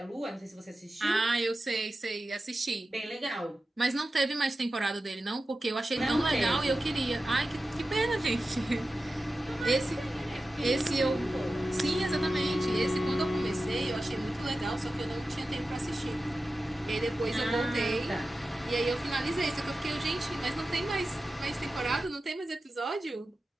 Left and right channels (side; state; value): both; normal; correlation 0.93